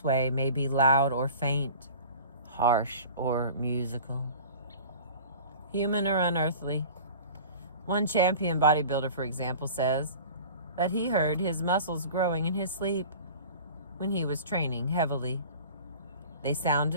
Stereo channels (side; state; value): both; inverted; correlation -0.40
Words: way may be loud or faint, harsh or musical, human or unearthly. One champion bodybuilder, for example, says that he heard his muscles growing in his sleep when he was training heavily. They